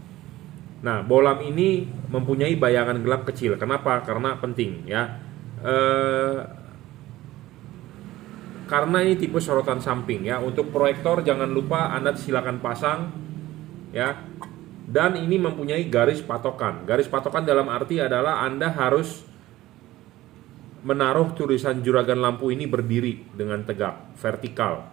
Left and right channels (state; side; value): quieter; left; 16.3 dB